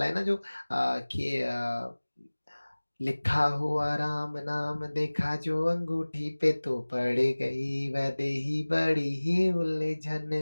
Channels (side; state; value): both; inverted; correlation -1.00